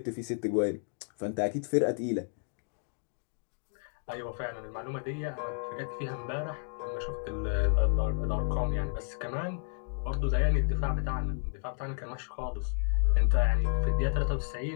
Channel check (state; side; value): silent; right; 57 dB below the other